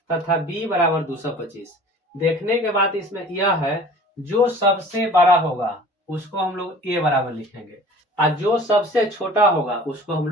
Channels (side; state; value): both; normal; correlation 0.45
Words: तथा b बराबर 225। देखने के बाद इसमें यह है, जो सबसे बड़ा होगा उसको हम लोग a बराबर लिखेंगे और जो सबसे छोटा होगा उसको हम